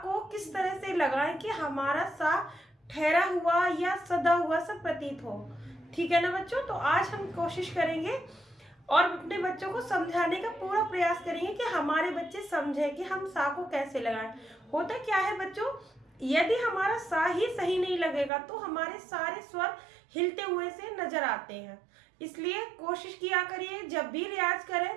किस तरह से लगाएं कि हमारा सा ठहरा हुआ या सदा हुआ सा प्रतीत हो। ठीक है ना बच्चों? तो आज हम कोशिश करेंगे और अपने बच्चों को समझाने का पूरा प्रयास करेंगे कि हमारे बच्चे समझें कि हम सा को कैसे लगाएं। होता क्या है बच्चों, यदि हमारा सा ही सही नहीं लगेगा तो हमारे सारे स्वर हिलते हुए से नजर आते हैं। इसलिए कोशिश किया करिए जब भी रियाज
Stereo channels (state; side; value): drops out; left; at 18.3 s